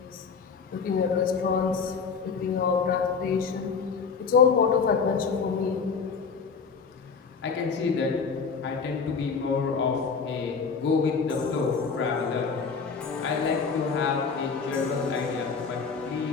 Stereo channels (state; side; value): quieter; right; 5.5 dB